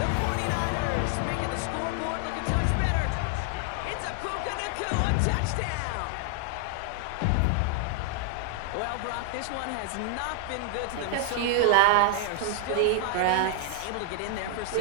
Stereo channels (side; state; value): both; different; correlation 0.00